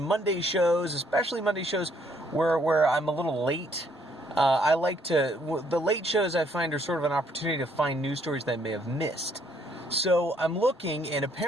shows, especially Monday shows where I'm a little late, the late shows I find are sort of an opportunity to find news stories that I may have missed. So I'm looking, and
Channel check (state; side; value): normal; both; correlation 0.67